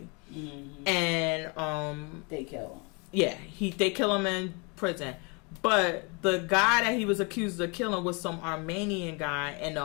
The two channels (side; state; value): right; quieter; 31.6 dB